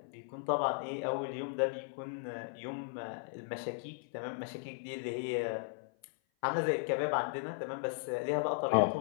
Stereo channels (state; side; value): silent; right; 53 dB below the other